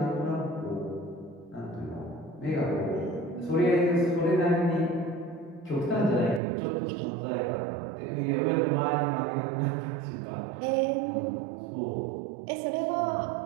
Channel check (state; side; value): drops out; left; at 6.4 s